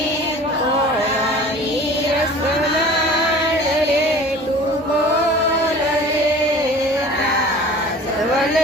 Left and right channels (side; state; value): both; normal; correlation 0.42